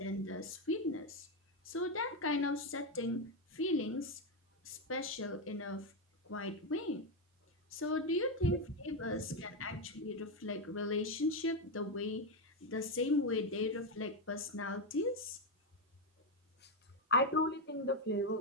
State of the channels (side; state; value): both; normal; correlation 0.07